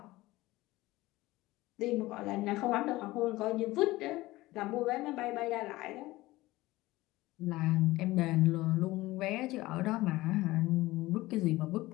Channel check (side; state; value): right; quieter; 18.7 dB